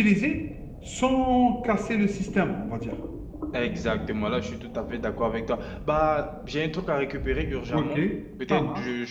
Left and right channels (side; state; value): both; identical; correlation 1.00